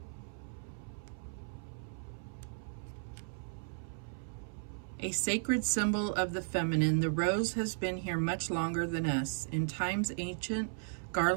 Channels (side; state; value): left; silent; 54 dB below the other